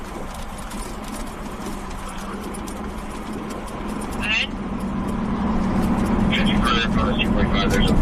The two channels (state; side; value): identical; both; correlation 1.00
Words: Ahead. There's a